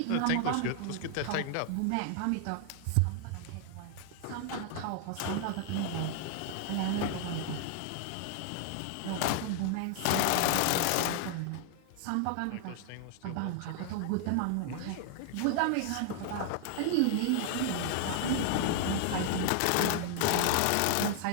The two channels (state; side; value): different; both; correlation 0.00